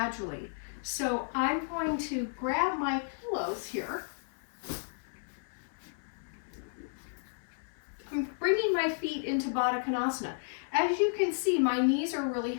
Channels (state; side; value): silent; right; 56 dB below the other